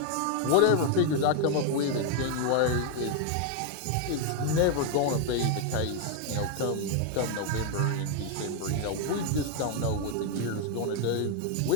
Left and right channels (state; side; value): different; both; correlation 0.00